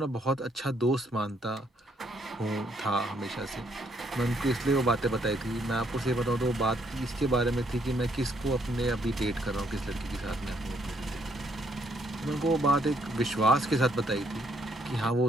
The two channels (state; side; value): normal; both; correlation 0.70